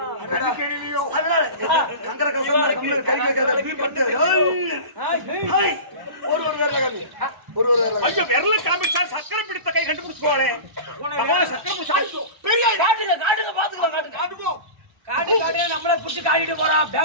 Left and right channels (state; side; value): late; left; 1.0 ms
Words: அடடா. அதனால கங்கர கசம் கம்மில கறி வைக்காத பீ படுத்து. ஹேய் ஒரு வேறல காமி. ஒரு வேறல. ஐயோ விரல காமிச்சா சக்கரை பிடித்த கை கண்டுபிடிச்சுவாளே. பகவான் சக்கரை பிடிச்சா பெரிய காட்டுங்க பாத்துக்கலாம் காட்டுங்க. காடு காடு நம்மள புடிச்சு காடிட்டு போறான்.